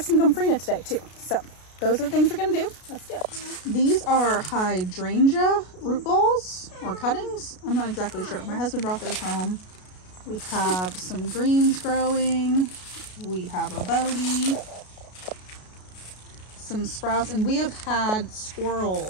some gomphrena today too. So those are the things we're gonna do. Let's do it. These are hydrangea root balls or cuttings. I'm not exactly sure. My husband brought those home. We have some greens growing. We have a bodie, some sprouts, and we have had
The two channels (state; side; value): late; right; 33 ms